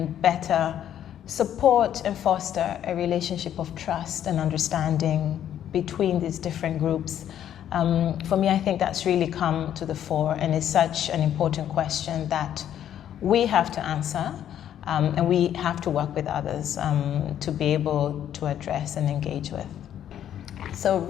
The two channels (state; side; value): quieter; right; 10.5 dB